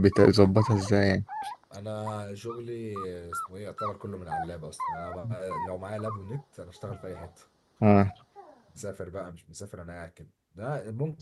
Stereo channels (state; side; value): identical; both; correlation 1.00